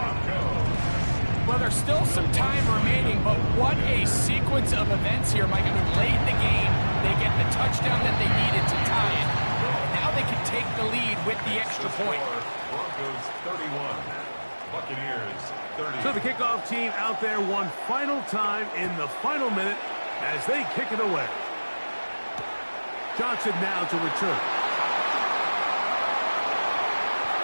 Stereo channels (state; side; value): inverted; both; correlation -1.00